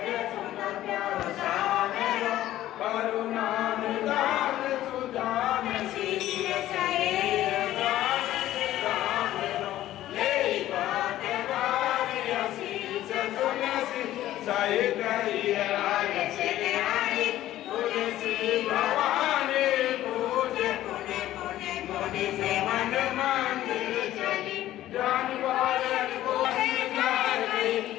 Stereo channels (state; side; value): quieter; right; 13.9 dB